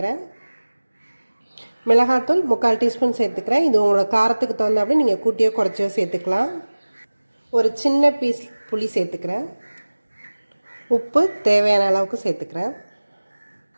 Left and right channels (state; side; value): inverted; both; correlation -1.00